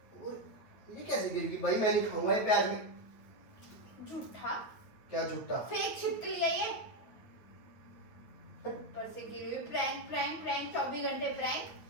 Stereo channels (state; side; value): late; right; 9.1 ms